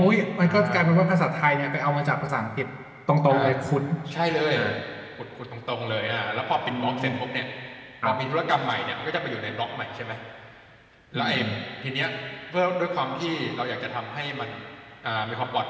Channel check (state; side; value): identical; both; correlation 1.00